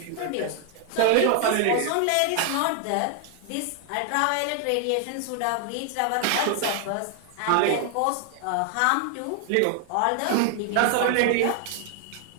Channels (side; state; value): both; different; correlation 0.00